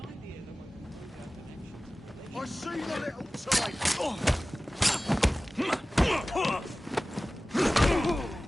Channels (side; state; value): both; normal; correlation 0.97